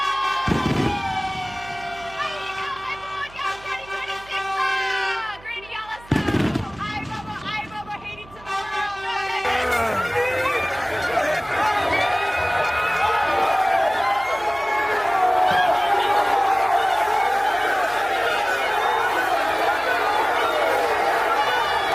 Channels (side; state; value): right; noise; hum, 22 dB below the sound